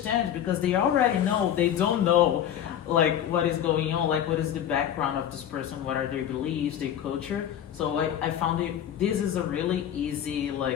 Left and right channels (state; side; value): quieter; right; 10.1 dB